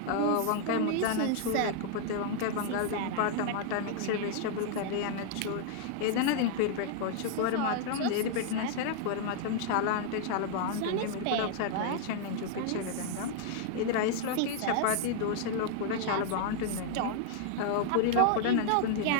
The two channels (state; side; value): different; both; correlation -0.01